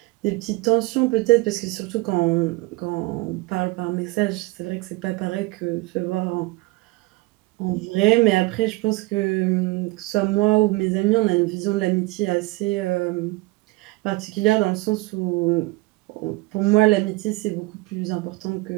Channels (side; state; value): left; quieter; 22.2 dB